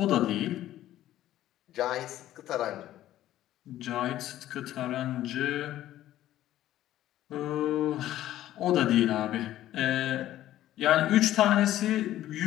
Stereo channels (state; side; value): quieter; right; 13.5 dB